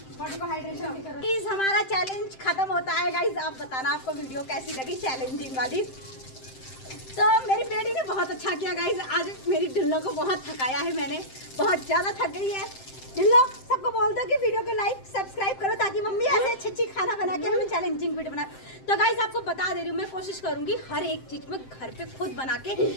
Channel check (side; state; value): right; late; 7.7 ms